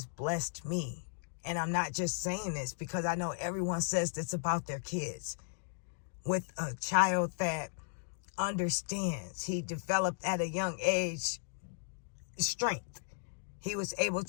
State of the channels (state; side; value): silent; right; digital silence